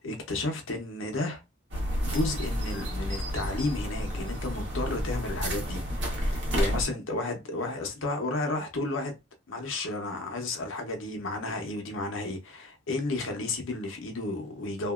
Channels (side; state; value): both; normal; correlation 0.51